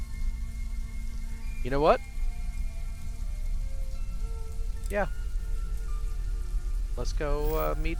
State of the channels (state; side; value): identical; both; correlation 1.00